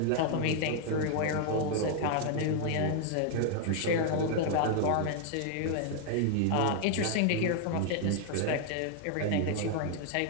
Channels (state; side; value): different; both; correlation 0.00